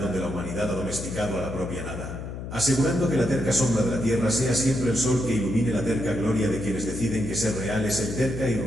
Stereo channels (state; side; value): noise; left; hum, 8 dB below the sound